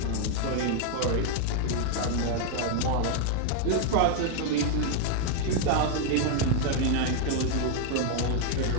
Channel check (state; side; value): different; both; correlation 0.00